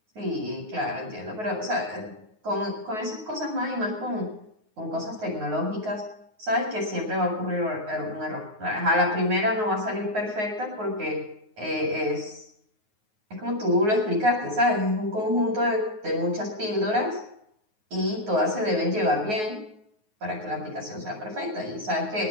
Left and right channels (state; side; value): late; left; 9.4 ms